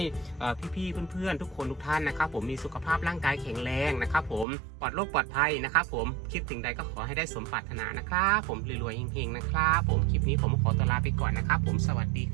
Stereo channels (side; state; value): left; drops out; at 4.5 s